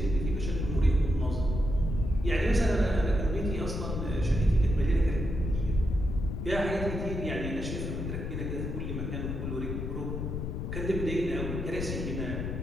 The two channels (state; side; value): noise; left; rumble, 3 dB below the sound